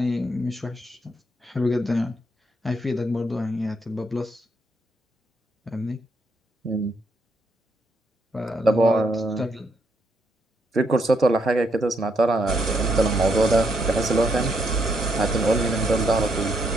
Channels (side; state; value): both; normal; correlation 0.75